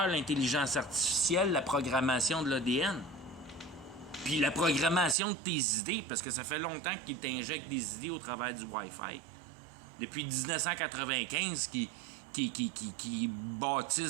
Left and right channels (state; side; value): drops out; left; at 5.2 s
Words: l'intelligence artificielle, la programmation de l'ADN. Puis la programmation de tes idées, parce que ça fait longtemps qu'ils t'injectent des idées au travers du Wi-Fi. Depuis 1995, qui